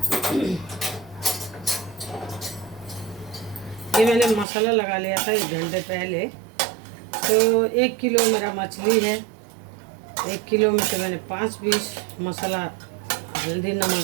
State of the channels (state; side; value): drops out; left; at 4.5 s